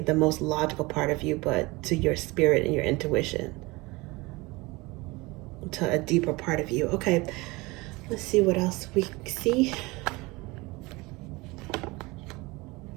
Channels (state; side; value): quieter; left; 23.3 dB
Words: most logical part of you, but to your spirit and your intuition, to a deeper part of you. Okay, let's see what else we see.